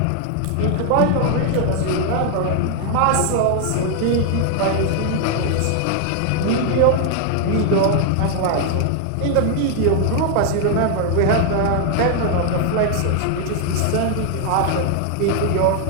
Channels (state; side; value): different; both; correlation 0.00